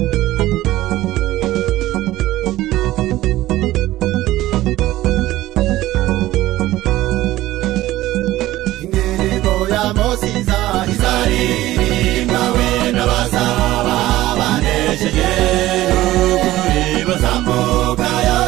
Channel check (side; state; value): left; quieter; 15.9 dB